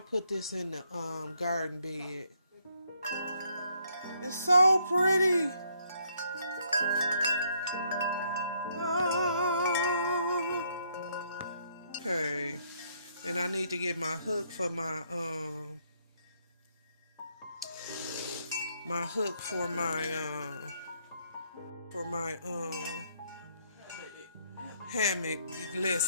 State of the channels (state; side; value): inverted; both; correlation -0.71